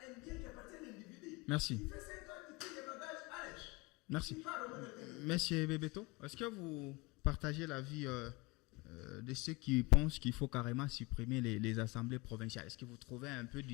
bien qui appartient à l'individu. Merci. Il fait 5 ans, il tire les bagages, allez. Merci. Monsieur Bebeto, est-ce que vous partagez l'avis de ceux qui pensent qu'il faut carrément supprimer les assemblées provinciales. Est-ce que vous trouvez un peu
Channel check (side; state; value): right; quieter; 24.4 dB